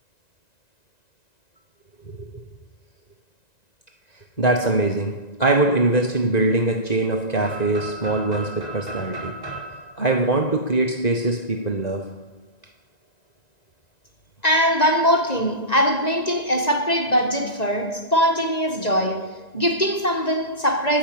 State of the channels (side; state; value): right; late; 1.9 ms